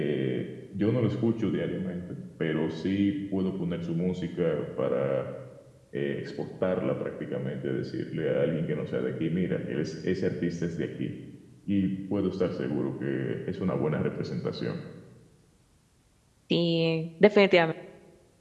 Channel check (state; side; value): identical; both; correlation 1.00